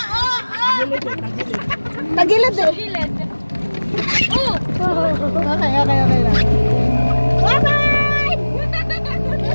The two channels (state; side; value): inverted; both; correlation -1.00